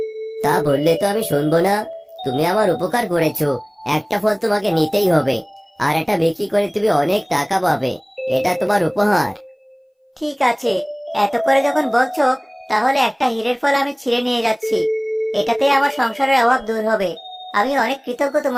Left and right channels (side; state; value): both; identical; correlation 1.00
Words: তা বললে তো আমি শুনবো না। তুমি আমার উপকার করেছো, একটা ফল তোমাকে নিতেই হবে। আর এটা বিক্রি করে তুমি অনেক টাকা পাবে। এটা তোমার উপহার। ঠিক আছে, এত করে যখন বলছো, তাহলে একটা হীরের ফল আমি ছিঁড়ে নিয়ে যাচ্ছি। এটাতে আমার সংসারের অভাব দূর হবে। আমি অনেক কৃতজ্ঞ